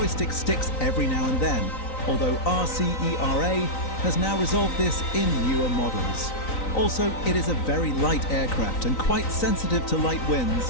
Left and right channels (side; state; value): right; late; 3.9 ms